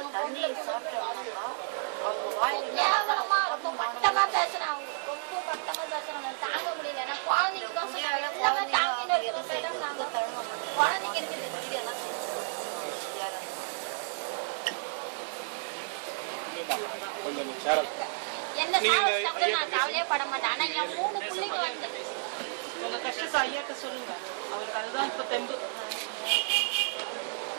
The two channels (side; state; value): left; silent; 57 dB below the other